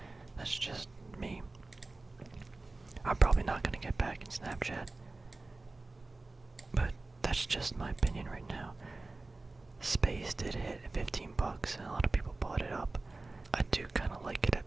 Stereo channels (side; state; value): left; quieter; 3.3 dB